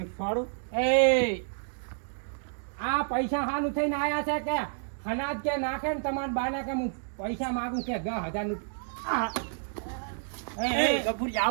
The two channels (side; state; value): left; silent; digital silence